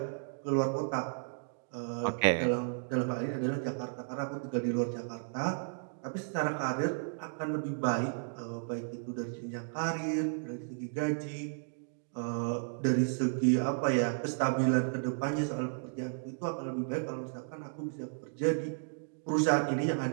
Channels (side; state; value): left; silent; digital silence